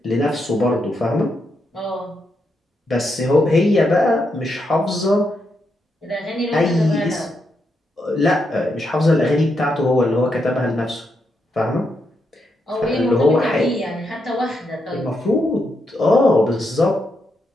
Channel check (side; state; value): both; normal; correlation 0.82